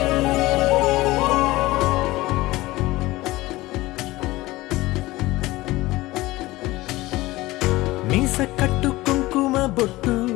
మీస కట్టు కుంకుమ బొట్టు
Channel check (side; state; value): right; quieter; 19.0 dB